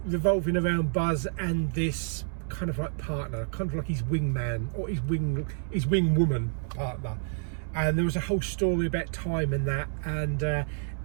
revolving around Buzz and this kind of like partner, kind of like his wingman or his wing woman partner. And there was a whole story about time and that, and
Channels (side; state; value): left; silent; 59 dB below the other